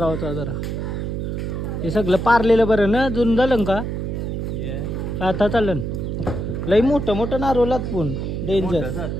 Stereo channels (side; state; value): right; noise; hum, 3 dB below the sound